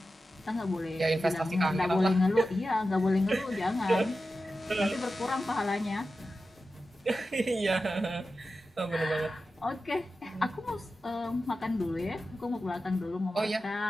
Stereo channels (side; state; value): both; normal; correlation 0.92